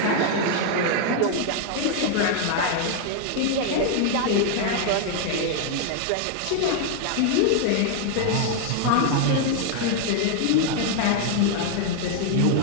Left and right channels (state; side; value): different; both; correlation 0.00